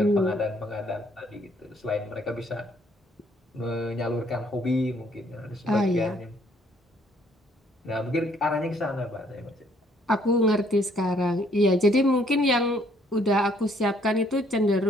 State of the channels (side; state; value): both; normal; correlation 0.65